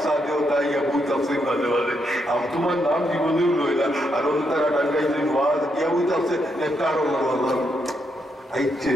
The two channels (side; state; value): both; normal; correlation 0.79